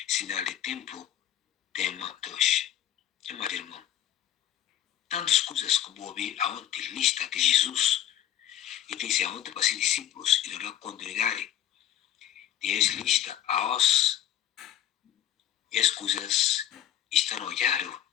sinal de tempo, tema 2. Meu amado irmão, tantas coisas que vou ouvir aonde lista de Jesus e disse aonde para ser discípulos e não congregarem. Deus lista aos e as coisas estão olhando,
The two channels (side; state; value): right; quieter; 11.6 dB